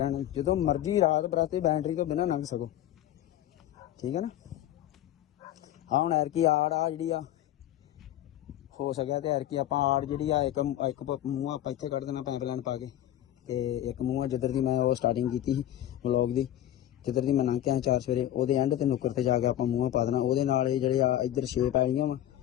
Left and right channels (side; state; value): right; quieter; 12.5 dB